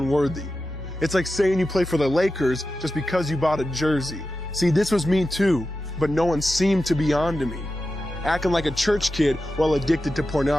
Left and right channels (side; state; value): both; normal; correlation 0.92